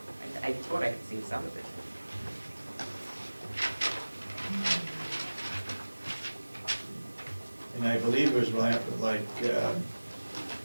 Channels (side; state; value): both; inverted; correlation -1.00